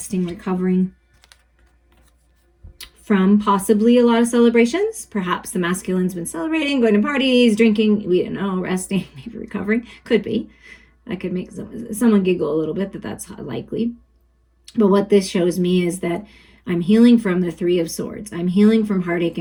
recovering from possibly a lot of celebrations. Perhaps the masculine's been celebrating, going to parties, drinking, we don't know, resting, maybe recovering. Could be. That could make someone giggle a little bit, that's likely. But what this shows me is that I'm healing from the Three of Swords. I'm healing from heartache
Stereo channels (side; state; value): both; identical; correlation 1.00